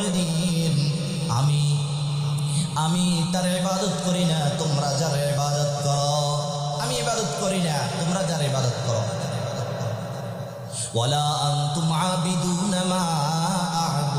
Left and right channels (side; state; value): both; identical; correlation 1.00